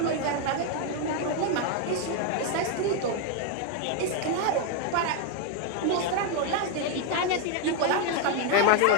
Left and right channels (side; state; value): both; different; correlation 0.01